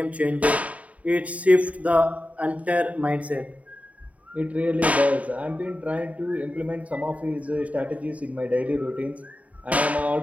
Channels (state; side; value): late; left; 0.068 ms